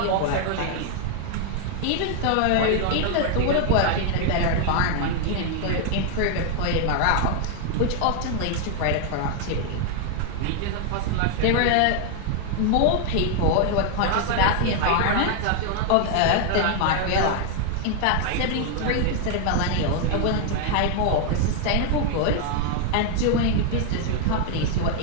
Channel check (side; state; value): both; different; correlation 0.00